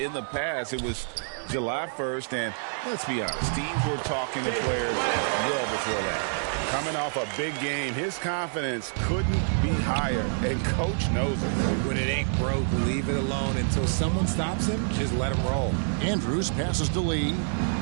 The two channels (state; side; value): silent; left; 60 dB below the other